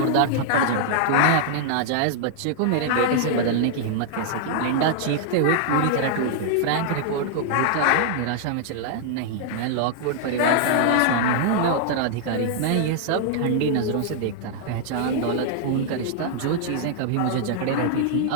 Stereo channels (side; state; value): both; different; correlation -0.01